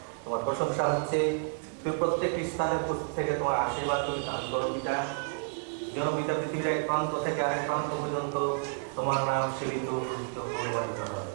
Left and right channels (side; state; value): left; silent; 57 dB below the other